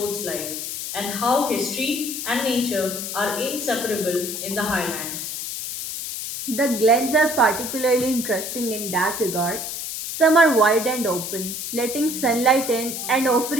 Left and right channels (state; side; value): noise; left; hiss, 5 dB below the sound